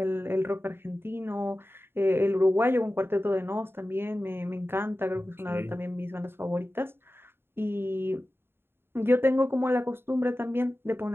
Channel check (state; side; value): late; left; 0.11 ms